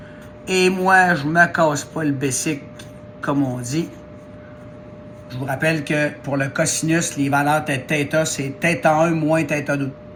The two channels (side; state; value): both; identical; correlation 1.00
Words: Et moi, je ne me casse pas le basic, comme on dit. Je vous rappelle que pour le cosinus, les valeurs de θ, c'est θ1 moins θ2.